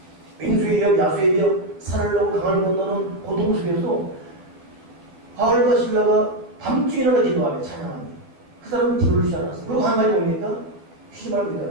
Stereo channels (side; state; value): left; late; 12 ms